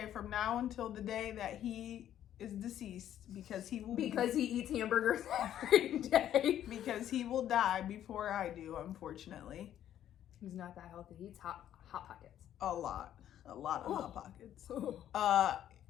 from now until the day that he is deceased, because he eats hamburgers every day. because he will die before I do, unfortunately. He's not that healthy. He eats hot pockets. A lot of Hot Pockets. Oh.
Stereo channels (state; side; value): quieter; right; 11.1 dB